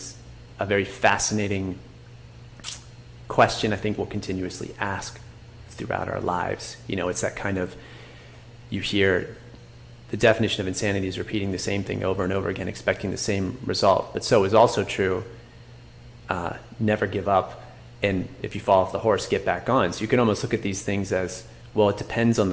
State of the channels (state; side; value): identical; both; correlation 1.00